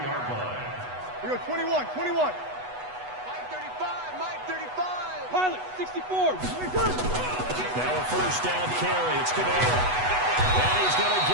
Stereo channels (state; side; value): late; left; 8.1 ms